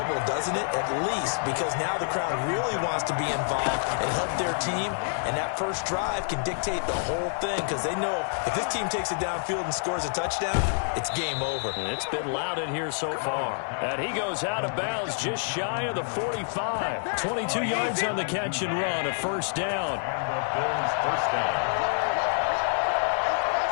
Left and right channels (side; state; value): right; silent; digital silence